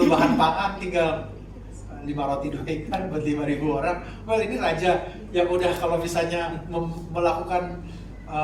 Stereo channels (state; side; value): identical; both; correlation 1.00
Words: bahan pangan, tinggal 5 roti 2 ikan buat 5.000 orang. Well, ini raja yang udah kalau misalnya melakukan